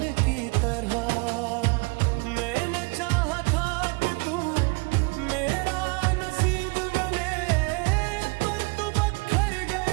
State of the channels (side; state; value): left; quieter; 29.9 dB